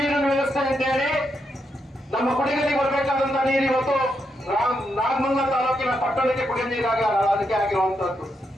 ವ್ಯವಸ್ಥೆ ಅಂತ ಹೇಳಿ ನಮ್ಮ ಕುಡಿಗಲಿಗೆ ಬರಬೇಕಾದಂತ ನೀರು ಇವತ್ತು ನಾಗಮಂಗಲ ತಾಲೂಕಿನ ಪಟ್ಟಣಕ್ಕೆ ಕುಡಿಯೋ ನೀರಾಗಿ ಅದಕ್ಕೆ ಆಗಿರುವಂತದ್ದು.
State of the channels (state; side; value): normal; both; correlation 0.82